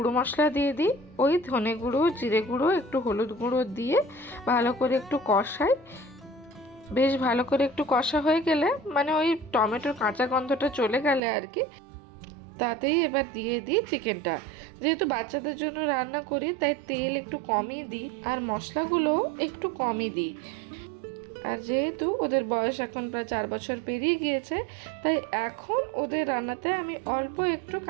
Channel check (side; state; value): left; drops out; at 11.2 s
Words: মশলা দিয়ে দিই, ওই ধনে গুঁড়ো, জিরে গুঁড়ো, একটু হলুদ গুঁড়ো দিয়ে ভালো করে একটু কষাই। বেশ ভালো করে একটু কষা হয়ে গেলে, মানে ওই টমেটোর কাঁচা গন্ধটা চলে গেলে আর কি, তাতেই এবার দিয়ে দিই চিকেনটা। যেহেতু বাচ্চাদের জন্য রান্না করি তাই তেল একটু কমই দিই আর মশলাগুলো একটু কমই দিই। আর যেহেতু ওদের বয়স এখন প্রায় 4 বছর পেরিয়ে গিয়েছে, তাই এখন ওদের রান্নাতে আমি অল্প একটু